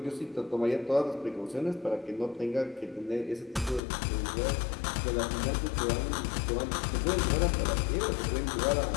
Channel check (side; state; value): right; drops out; at 3.8 s